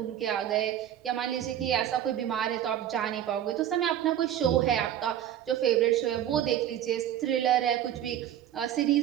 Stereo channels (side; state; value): left; quieter; 11.0 dB